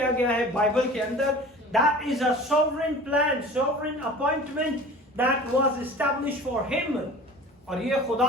गया है बाइबल के अंदर. That is a sovereign plan, sovereign appointment that was established for him. और ये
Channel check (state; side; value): normal; both; correlation 0.41